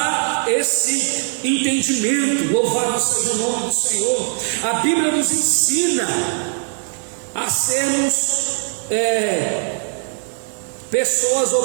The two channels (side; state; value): left; silent; 66 dB below the other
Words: esse entendimento. Louvado seja o nome do Senhor. A Bíblia nos ensina a sermos pessoas